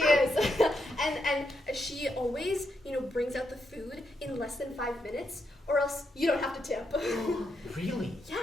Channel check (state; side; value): normal; both; correlation 0.81